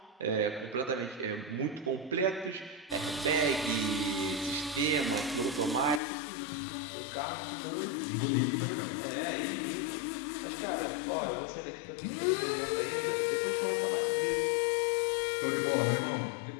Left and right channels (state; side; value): drops out; right; at 6.0 s